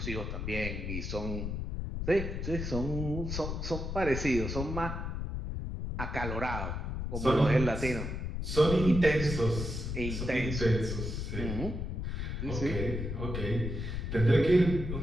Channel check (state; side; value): noise; left; rumble, 4 dB below the sound